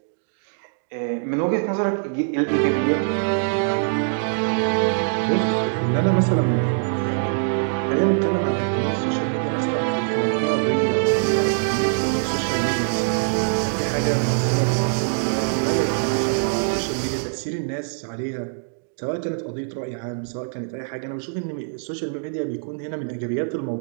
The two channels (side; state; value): left; silent; digital silence